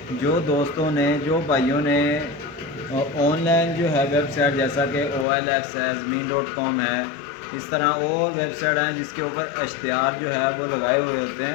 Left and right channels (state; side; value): drops out; right; at 5.2 s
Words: जो दोस्तों ने, जो भाइयों ने ऑनलाइन जो है वेबसाइट जैसा कि OLX है, ज़मीन.com है, इस तरह और वेबसाइट हैं जिसके ऊपर इश्तिहार जो है वो लगाए हुए होते